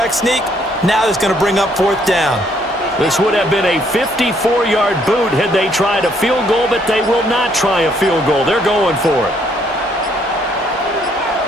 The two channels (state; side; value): normal; both; correlation 0.68